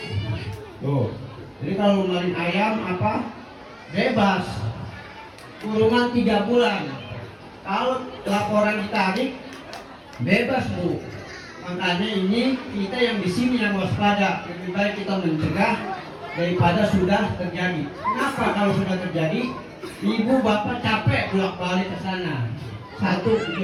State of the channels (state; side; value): identical; both; correlation 1.00